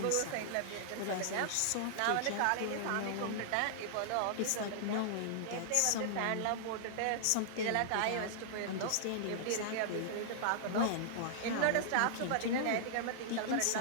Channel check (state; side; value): different; both; correlation -0.01